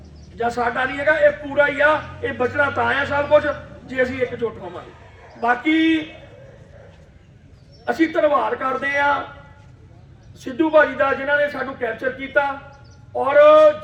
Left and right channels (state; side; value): identical; both; correlation 1.00